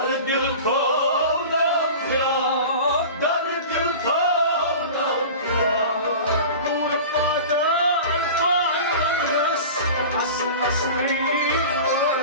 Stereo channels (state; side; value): inverted; both; correlation -0.35